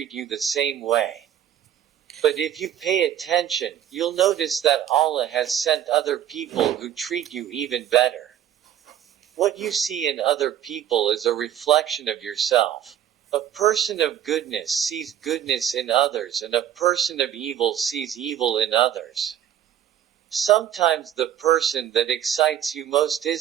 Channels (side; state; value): left; quieter; 10.5 dB